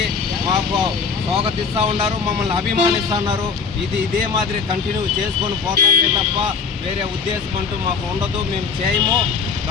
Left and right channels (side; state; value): right; quieter; 5.5 dB